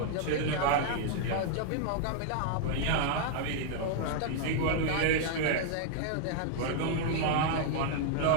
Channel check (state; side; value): different; both; correlation -0.01